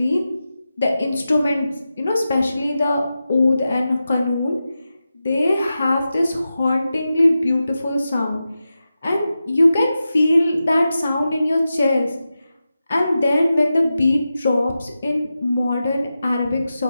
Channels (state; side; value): inverted; both; correlation -0.92